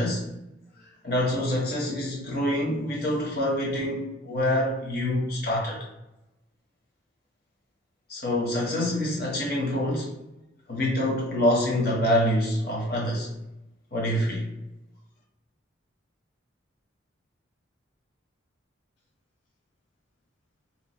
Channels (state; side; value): normal; both; correlation 0.44